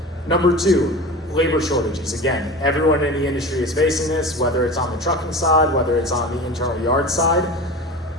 Number 2, labor shortages. Again, everyone in the industry is facing this, whether it's on the trucking side, whether it's on the internal yard side.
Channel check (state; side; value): normal; both; correlation 0.33